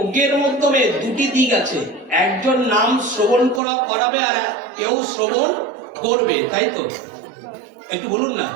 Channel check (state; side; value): drops out; left; at 3.6 s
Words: মাধ্যমে দুটি দিক আছে। একজন নাম শ্রবণ করাবে, আর কেউ শ্রবণ করবে, তাই তো? একটু বলুন না।